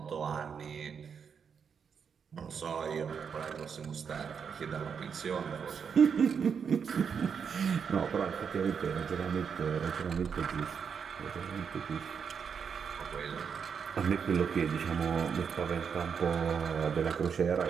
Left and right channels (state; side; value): quieter; left; 6.7 dB